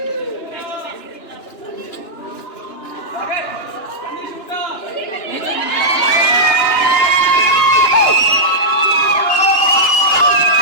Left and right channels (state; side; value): late; right; 2.9 ms